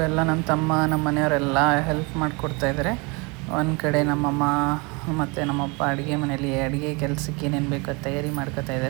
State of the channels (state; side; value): quieter; left; 29.0 dB